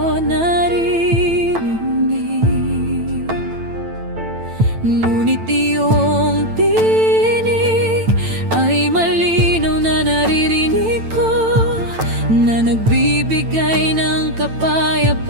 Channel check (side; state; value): left; late; 9.0 ms